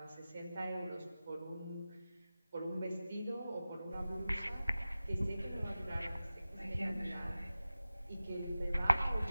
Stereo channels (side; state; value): both; inverted; correlation -0.96